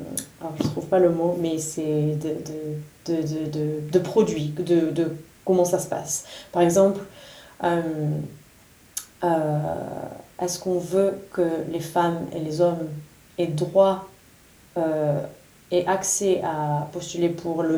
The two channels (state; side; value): identical; both; correlation 1.00